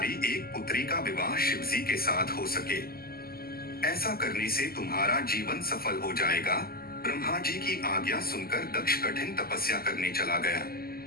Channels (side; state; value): right; late; 0.44 ms